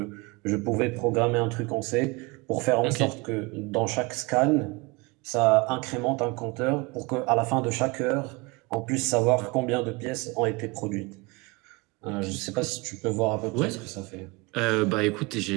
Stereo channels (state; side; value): quieter; left; 26.2 dB